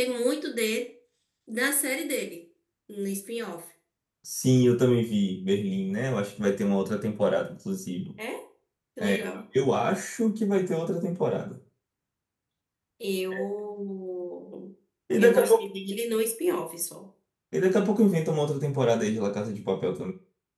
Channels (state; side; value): identical; both; correlation 1.00